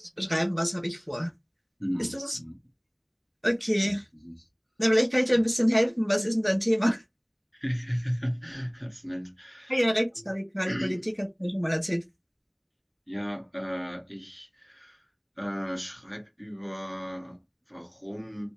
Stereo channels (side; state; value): both; identical; correlation 1.00